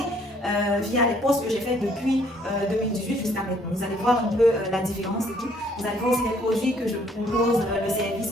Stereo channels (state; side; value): normal; both; correlation 0.63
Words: via les posts que j'ai fait depuis 2018 jusqu'à maintenant. Vous allez voir un peu la différence et tout. Vous allez voir aussi les produits que je propose, le service